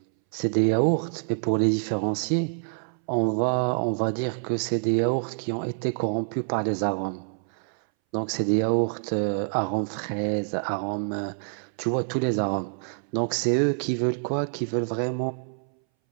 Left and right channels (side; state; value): left; silent; 61 dB below the other